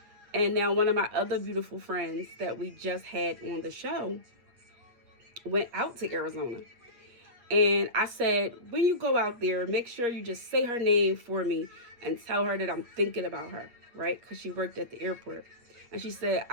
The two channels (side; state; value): left; late; 8.4 ms